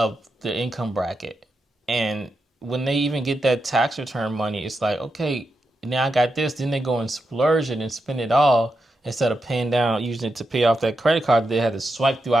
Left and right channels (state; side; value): normal; both; correlation 0.86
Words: the income bracket. And when they even get that tax return money, it's like, okay, now I got this. Then they go and splurge it and spend it all instead of paying down, using it to pay off that credit card they had to swipe